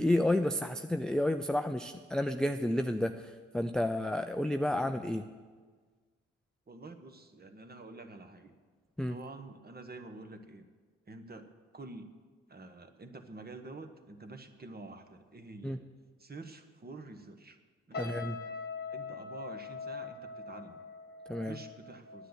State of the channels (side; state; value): both; normal; correlation 0.85